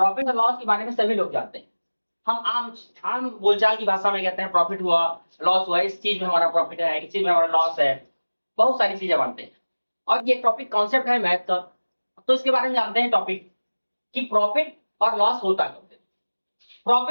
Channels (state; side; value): inverted; both; correlation -1.00